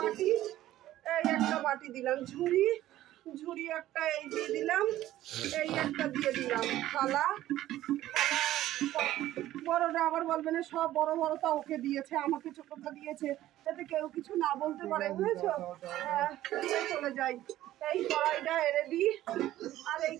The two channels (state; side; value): quieter; left; 14.2 dB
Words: এই একটা বাটি দিলাম, ঝুড়ি, ঝুড়ি একটা এই দিয়ে দিলাম, এই একটা দিয়ে দিলাম, থালা, বড়টা আবার বলবে না সব বড় বড়টা ওকে দিয়েছে, আমাকে ছোটটা দিয়েছে, যাতে কেউ কিছু না বলতে পারে, বুঝেছো? হ্যাঁ, চলে যাই। এই কড়াইটা এনে দিই, আর এই